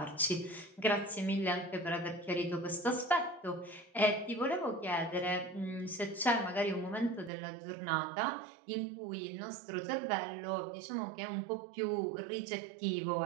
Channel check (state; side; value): drops out; left; at 7.3 s